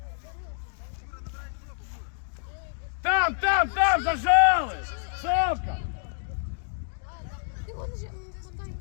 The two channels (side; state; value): right; silent; digital silence